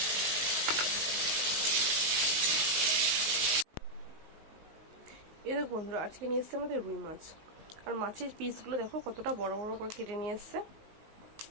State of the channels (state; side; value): late; left; 19 ms